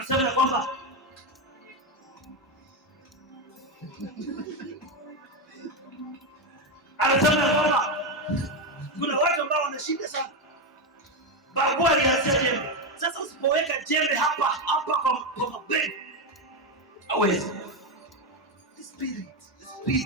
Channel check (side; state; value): both; normal; correlation 0.09